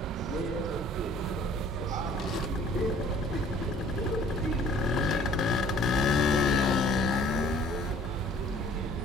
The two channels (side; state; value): both; normal; correlation 0.54